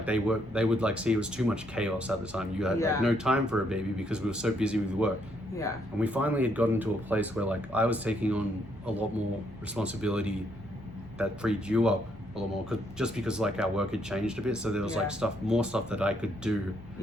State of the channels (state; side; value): normal; both; correlation 0.72